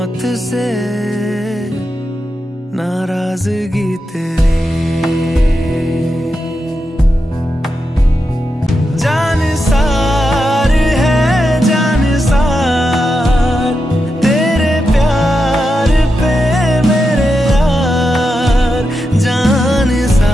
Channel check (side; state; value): both; normal; correlation 0.87